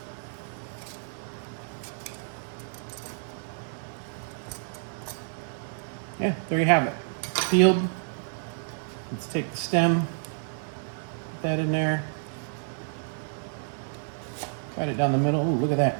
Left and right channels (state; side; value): silent; left; digital silence